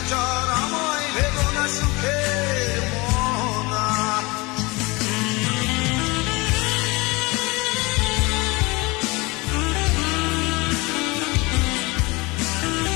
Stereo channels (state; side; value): quieter; right; 24.6 dB